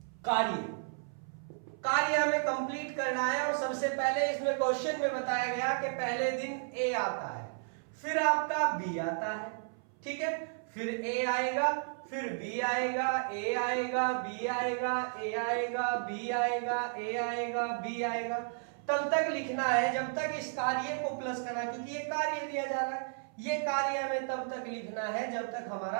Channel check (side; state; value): left; silent; 56 dB below the other